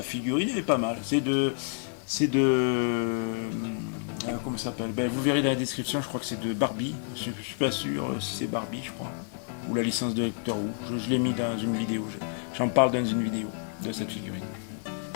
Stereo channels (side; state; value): right; silent; 59 dB below the other